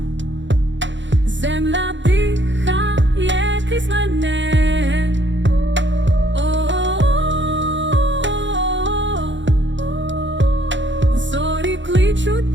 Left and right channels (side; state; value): left; late; 0.54 ms